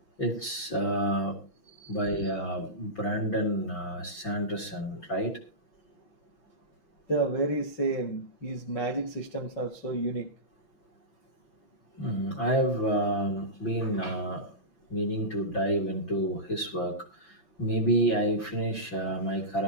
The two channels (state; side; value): late; right; 5.9 ms